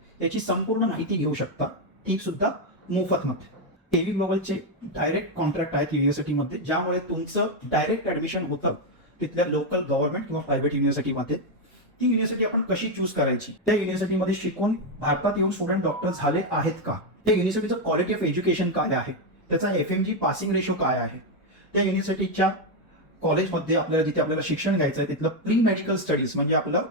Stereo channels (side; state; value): both; normal; correlation 0.04